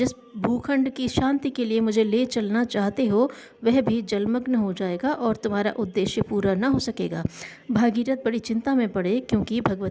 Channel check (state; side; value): identical; both; correlation 1.00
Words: भूखंड की शांति के लिए मुझे ले चलना चाहते हो, वह भी जलमग्न हो जाएगा और तुम्हारा उद्देश्य पूरा न हो सकेगा। भागीरथ बड़ी चिंता में पड़े, क्योंकि